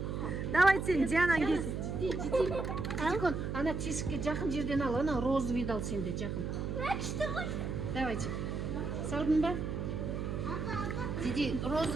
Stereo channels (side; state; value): right; noise; hum, 3 dB below the sound